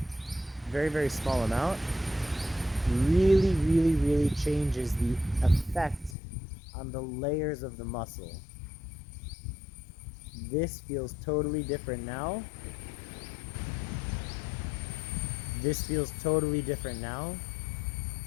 very, very small amount, really, really, really changes the effect on the layers of the muscle. This feels totally different now. This feels totally different now.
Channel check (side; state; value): right; drops out; at 6.2 s